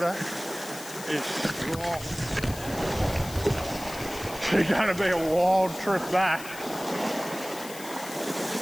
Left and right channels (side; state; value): left; noise; hiss, 14 dB below the sound